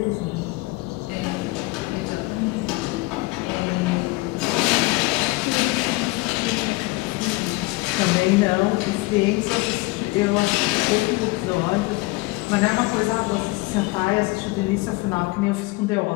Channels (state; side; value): quieter; right; 23.0 dB